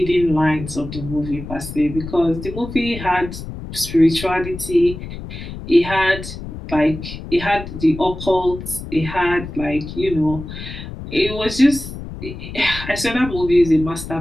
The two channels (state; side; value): noise; left; rumble, 10 dB below the sound